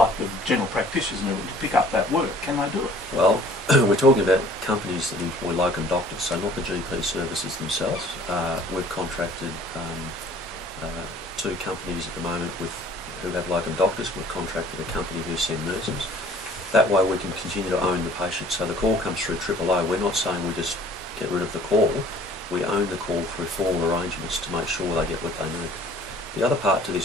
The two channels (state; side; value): normal; both; correlation 0.53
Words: the general practitioners and everything, to pick up that work. Can they do it? Well, we're talking about companies that employ locum doctors, so not the GP services themselves. We've contracted 2 companies at the moment who have locum doctors. We've contracted a company who send nurses. That way we can continue to own the patient. So the call comes through OOO. We're not saying we just get rid of the call. We own the call through formal arrangements to make sure they get what they need. The other part to this